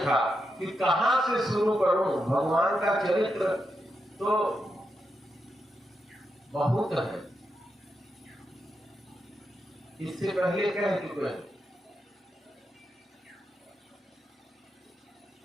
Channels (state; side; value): normal; both; correlation 0.85